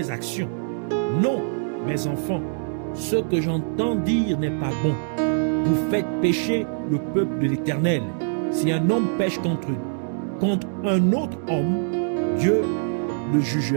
actions. Non, mes enfants, ce que j'entends dire n'est pas bon. Vous faites pécher le peuple de l'Éternel. Si un homme pêche contre un autre homme, Dieu le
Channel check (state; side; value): silent; left; digital silence